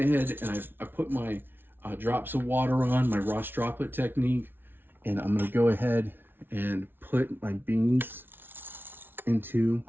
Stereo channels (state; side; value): late; left; 0.10 ms